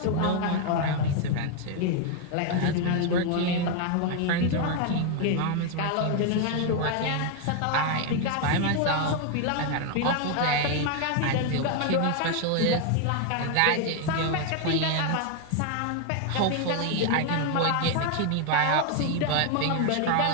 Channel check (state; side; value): different; both; correlation 0.01